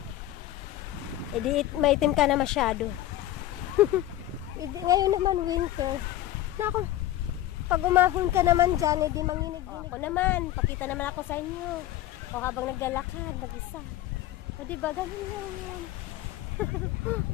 edi maitim ka na masyado. Ngayon naman winter. Nako, pag umahon ka naman dyan, edi manginig-ginig. Ako naman, pakita naman ako sa inyo. O habang naglalakad, mag-isa. O diba, ganun lang yun.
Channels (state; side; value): quieter; right; 14.0 dB